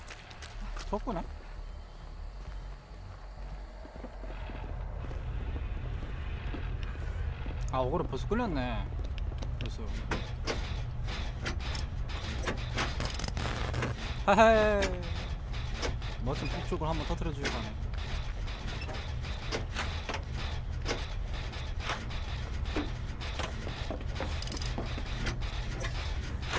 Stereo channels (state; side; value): identical; both; correlation 1.00